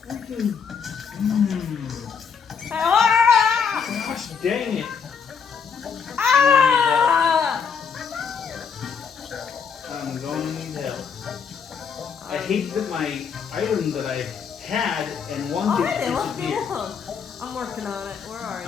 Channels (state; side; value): quieter; right; 6.4 dB